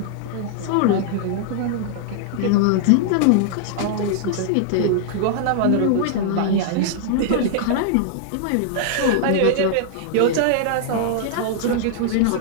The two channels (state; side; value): different; both; correlation -0.01